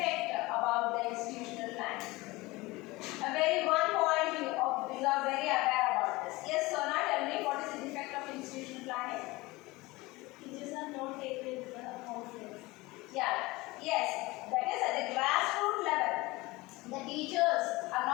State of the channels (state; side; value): quieter; right; 21.6 dB